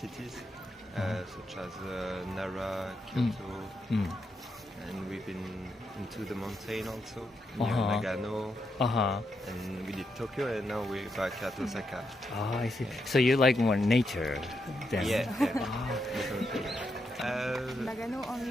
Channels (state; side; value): normal; both; correlation 0.83